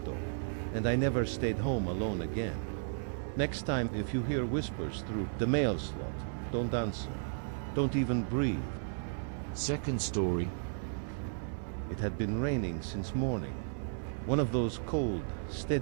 and I never stayed home alone again. Next time, if you hear whispers through the mail slot, don't answer. Don't even breathe. Second story. It had been raining since morning. One of those cold,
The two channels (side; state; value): left; silent; 55 dB below the other